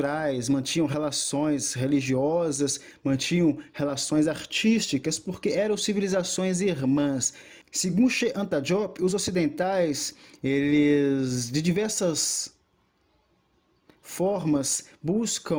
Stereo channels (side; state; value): both; identical; correlation 1.00